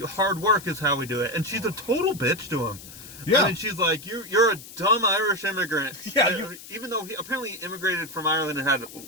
hard work is how we do it. And she's a total bitch to him. Yeah. I mean, she's like, you're a dumb Irish immigrant. Yeah. Even though he apparently immigrated from Ireland and had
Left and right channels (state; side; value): noise; left; hiss, 16 dB below the sound